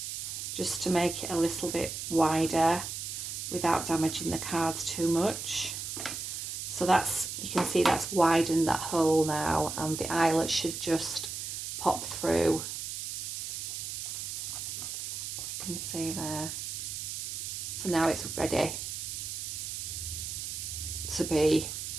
just to make it a little bit wider without damaging the cards too much. So that's, you can see that's widened that hole now, and the eyelet should just pop through. You can see there. So now it's ready to be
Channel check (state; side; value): noise; right; hiss, 5 dB below the sound